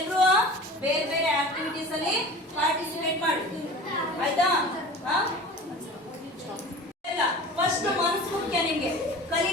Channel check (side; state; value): both; normal; correlation 0.38